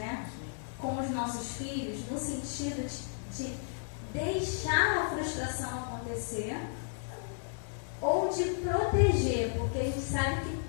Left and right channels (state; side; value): silent; right; 56 dB below the other